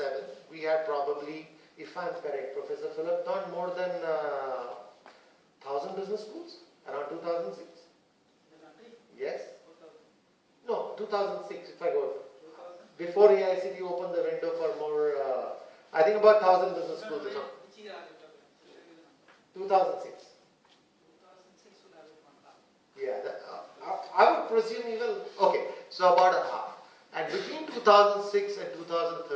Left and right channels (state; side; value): identical; both; correlation 1.00